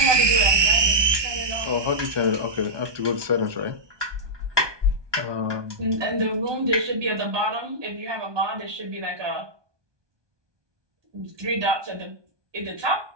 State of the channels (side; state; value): left; late; 1.2 ms